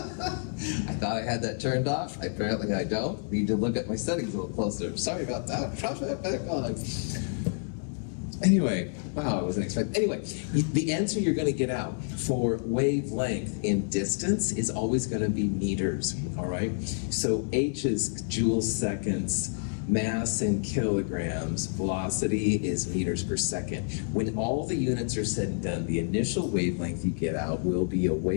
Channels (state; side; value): silent; right; 59 dB below the other